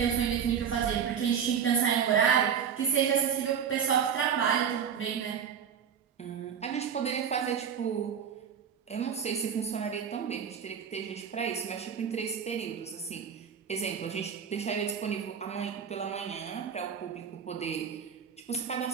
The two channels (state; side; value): quieter; left; 7.6 dB